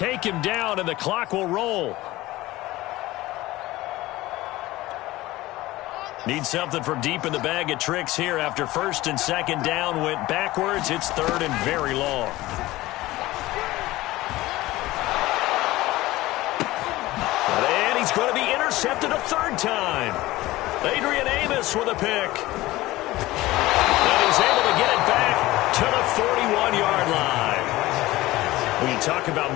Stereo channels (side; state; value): right; quieter; 18.0 dB